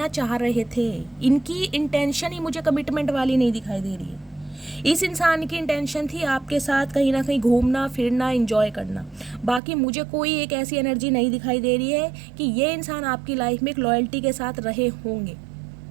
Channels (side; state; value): left; drops out; at 9.6 s